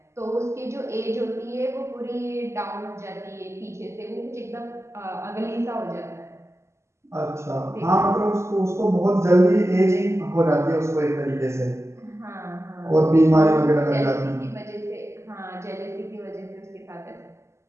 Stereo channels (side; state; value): left; late; 0.13 ms